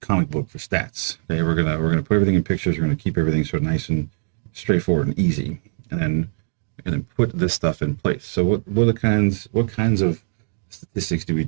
book for stats. Okay, we're gonna put everything in pictures. We're gonna keep everything sort of nice and straightforward and easy, and then we're gonna put this stuff in place. So what kinds of statistics do we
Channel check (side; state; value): left; silent; digital silence